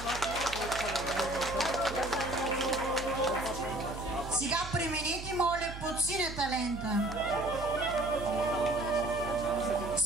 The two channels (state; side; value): noise; right; hum, 10 dB below the sound